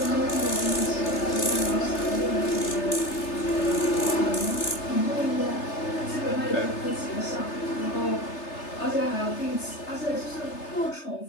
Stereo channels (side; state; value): right; late; 3.3 ms